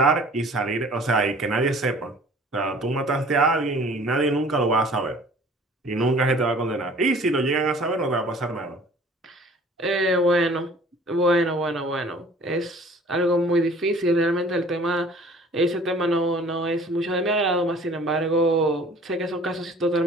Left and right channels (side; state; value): both; normal; correlation 0.50